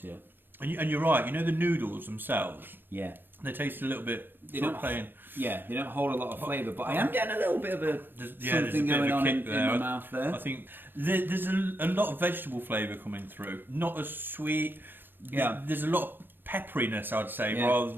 And you're right. You know the noodles themselves. Yeah. They taste a little bit. They don't hold a lot of flavour, but I am getting a little bit of something going on in my mouth there. I think there's a lot of vegetable flavour coming through. Not as sweet. Yeah. There's a lot of pepperiness, I'd say, rather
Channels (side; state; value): left; late; 0.095 ms